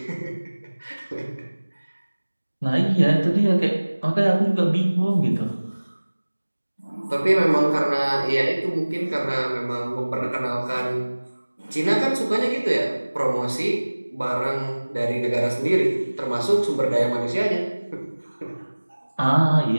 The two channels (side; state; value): both; inverted; correlation -1.00